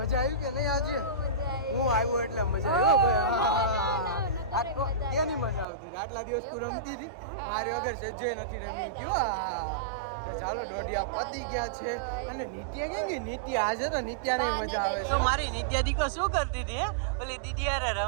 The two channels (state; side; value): drops out; left; at 5.7 s